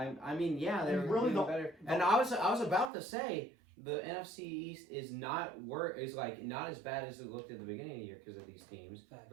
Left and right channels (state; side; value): drops out; left; at 2.9 s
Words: mean, yeah, they're And really doing the- better. And I was about to say the NFC East is not not as bad as it looked at the beginning of the year because of these teams,